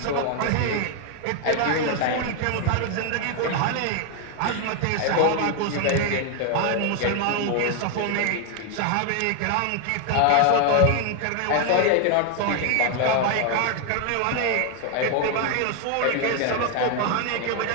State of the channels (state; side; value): different; both; correlation 0.01